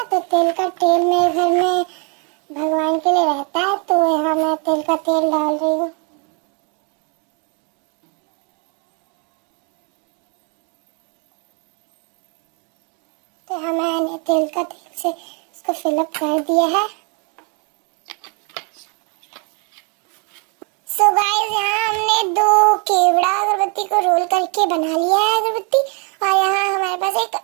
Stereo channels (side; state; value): left; quieter; 36.1 dB